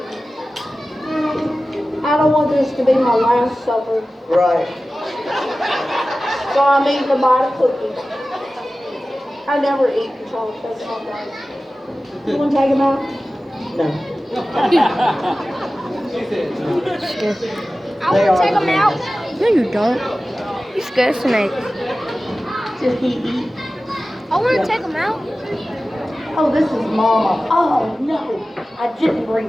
I don't want this to be my last supper. Right. So I'm eating a bite of cookie. I never eat chocolate. That's not right. You want to take them out? No. I want to take them out. No, you don't. You scared snake. Did he eat? I want to take them out. Oh, this is Mama. Oh, no. I didn't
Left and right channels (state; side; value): normal; both; correlation 0.96